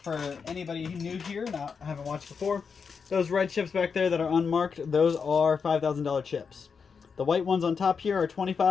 anybody new here and haven't watched before, those red chips back there that are unmarked, those are $5,000 chips. The white ones on top here are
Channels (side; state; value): right; quieter; 5.8 dB